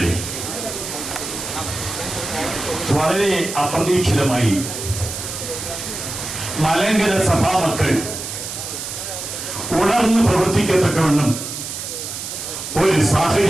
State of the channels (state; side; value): noise; right; hiss, 7 dB below the sound